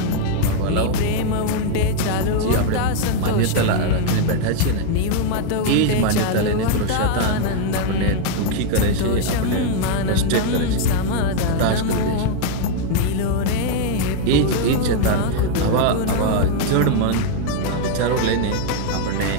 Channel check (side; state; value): both; different; correlation 0.00